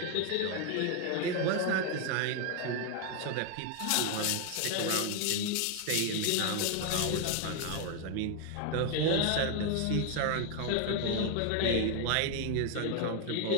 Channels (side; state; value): both; different; correlation 0.01